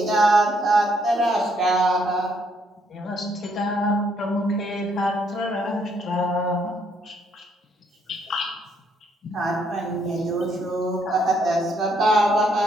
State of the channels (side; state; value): both; normal; correlation 0.71